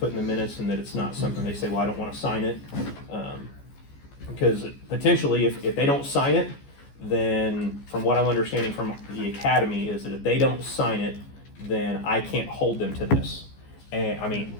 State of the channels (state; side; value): late; right; 14 ms